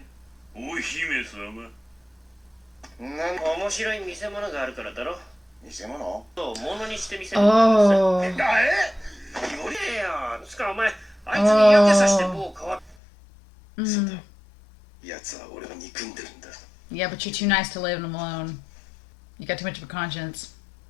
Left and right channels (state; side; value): drops out; right; at 13.0 s